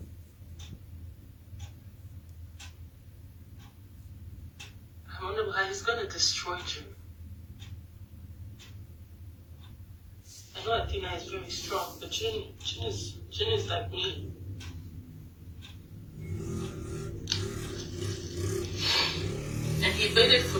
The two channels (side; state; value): both; identical; correlation 1.00